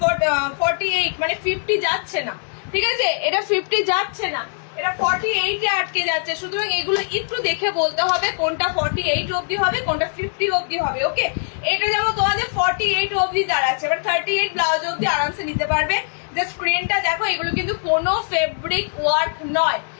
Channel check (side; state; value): right; silent; 65 dB below the other